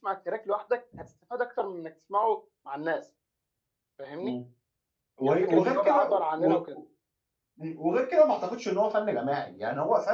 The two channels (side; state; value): both; identical; correlation 1.00